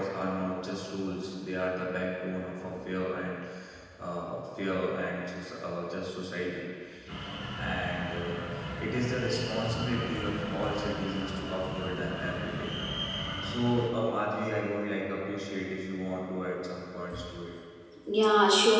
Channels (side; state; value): both; identical; correlation 1.00